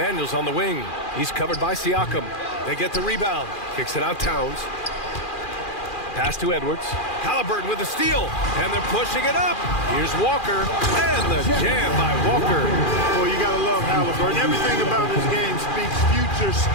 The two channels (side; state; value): right; late; 2.4 ms